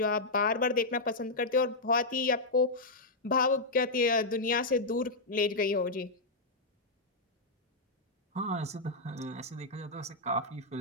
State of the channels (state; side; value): quieter; right; 3.0 dB